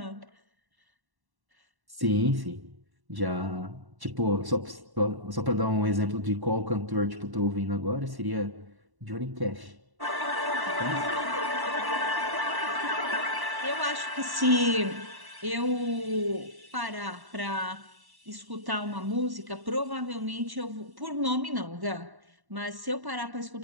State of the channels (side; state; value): left; late; 1.1 ms